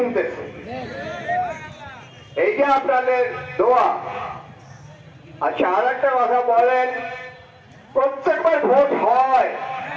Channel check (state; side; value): identical; both; correlation 1.00